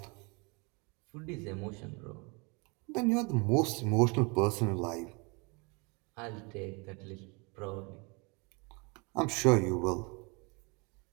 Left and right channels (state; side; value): quieter; left; 30.5 dB